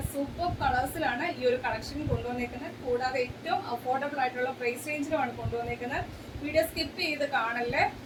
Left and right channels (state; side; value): identical; both; correlation 1.00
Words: സൂപ്പർ കളേഴ്സിലാണ് ഈ ഒരു കളക്ഷൻ കൊണ്ടുവന്നേക്കുന്നത്. കൂടാതെ ഏറ്റവും അഫോർഡബിൾ ആയിട്ടുള്ള പ്രൈസ് റേഞ്ചിലുമാണ് കൊണ്ടുവന്നേക്കുന്നത്. വീഡിയോ സ്കിപ്പ് ചെയ്ത് കാണല്ലേ.